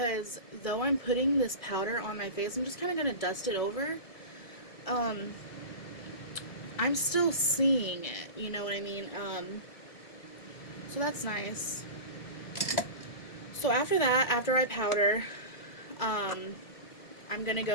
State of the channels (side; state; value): right; late; 1.7 ms